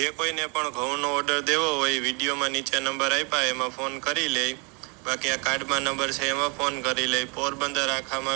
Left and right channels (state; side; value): quieter; left; 31.9 dB